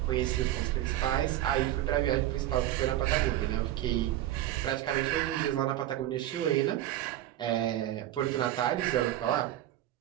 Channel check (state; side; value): quieter; left; 13.5 dB